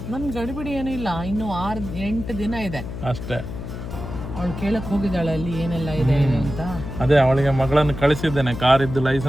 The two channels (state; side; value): noise; left; hum, 8 dB below the sound